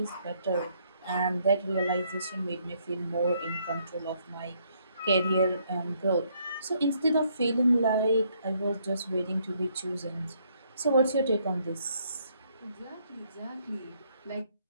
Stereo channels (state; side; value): inverted; both; correlation -0.70